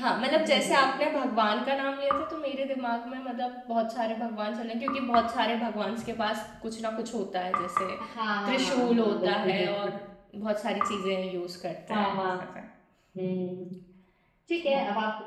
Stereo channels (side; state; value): both; identical; correlation 1.00